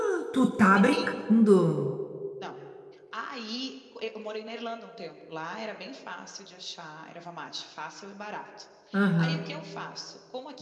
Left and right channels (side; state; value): both; identical; correlation 1.00